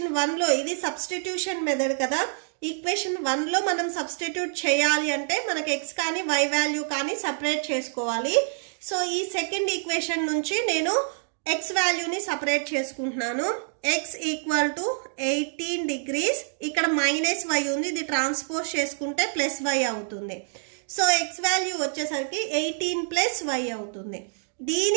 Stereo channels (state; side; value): silent; left; digital silence